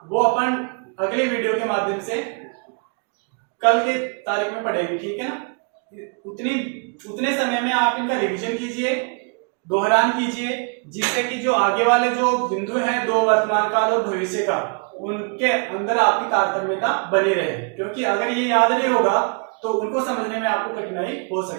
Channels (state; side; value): quieter; left; 38.5 dB